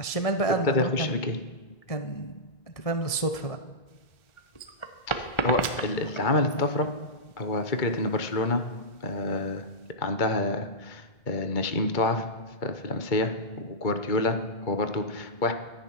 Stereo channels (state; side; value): late; right; 1.7 ms